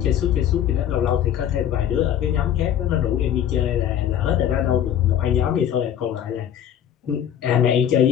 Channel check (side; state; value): right; quieter; 10.0 dB